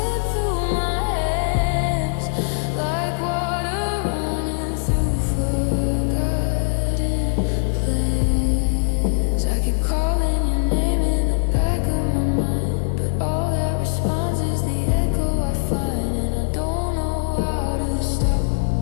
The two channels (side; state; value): right; silent; 65 dB below the other